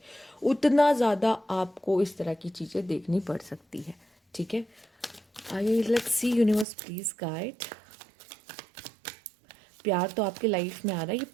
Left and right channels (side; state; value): left; drops out; at 6.7 s